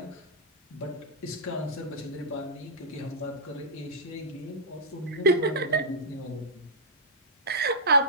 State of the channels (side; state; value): both; normal; correlation -0.13